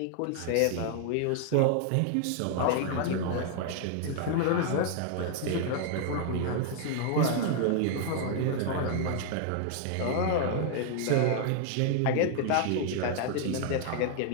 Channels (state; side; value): different; both; correlation 0.00